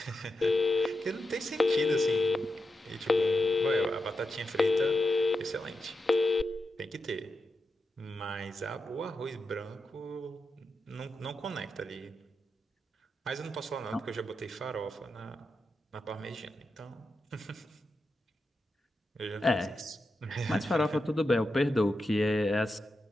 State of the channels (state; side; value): normal; both; correlation 0.88